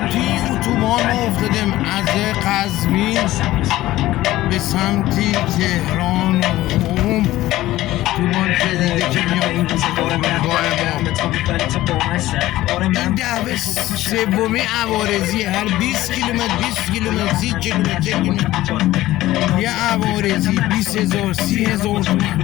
توی اتوبان ما افتادیم از قزوین به سمتی تهران و قم. اتوبان جدیده که میاد فرودگاه ما. این دعوه سومی عوارضی، هر 20 کیلومتر 20 کیلومتر 30 کیلومتر یه عوارضی 20,000 30,000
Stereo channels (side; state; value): right; quieter; 16.0 dB